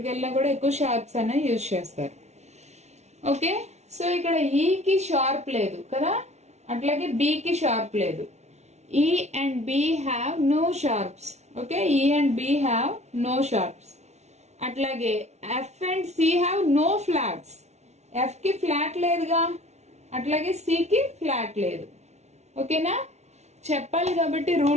వెళ్ళినా కూడా ఎక్కువ షార్ప్స్ అనే యూజ్ చేస్తారు. ఓకే, సో ఇక్కడ ఈకి షార్ప్ లేదు కదా, అట్లాగే బికి షార్ప్ లేదు. E and B have no sharps. Okay, E and B have no sharps. అట్లాగే F and C have no flats. F కి ఫ్లాట్ లేదుగా, అట్లాగే సి కి ఫ్లాట్ లేదు. ఓకేనా? చెప్పాలి కాబట్టి,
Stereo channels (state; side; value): late; left; 0.32 ms